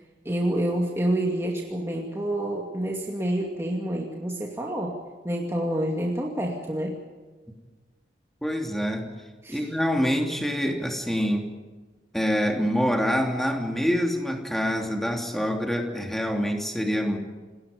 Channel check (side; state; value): both; normal; correlation 0.87